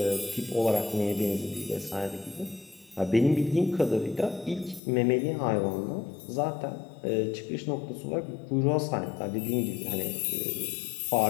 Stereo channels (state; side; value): drops out; right; at 4.8 s